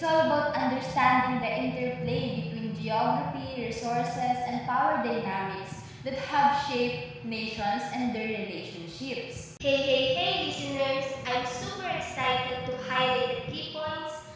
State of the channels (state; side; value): identical; both; correlation 1.00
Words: all about understanding the interplay between geography, resources, and power dynamics that have shaped nations and their relationships. Hey, listeners! I'm super excited to highlight the key points